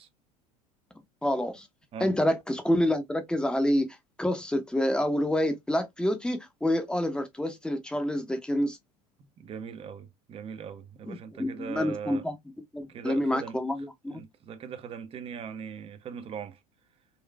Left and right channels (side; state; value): both; normal; correlation 0.90